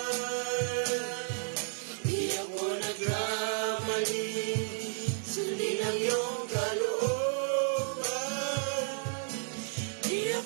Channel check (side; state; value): left; silent; 56 dB below the other